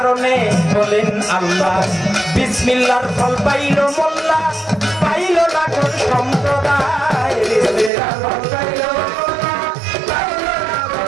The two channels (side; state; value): left; drops out; at 7.9 s